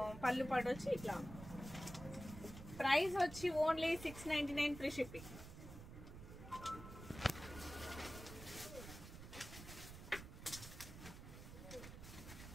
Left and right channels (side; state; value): right; noise; rumble, 12 dB below the sound